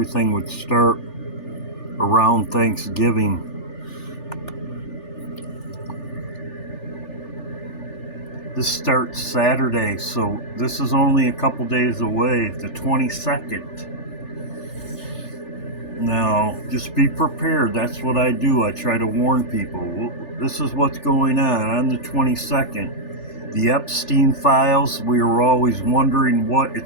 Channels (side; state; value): right; late; 3.4 ms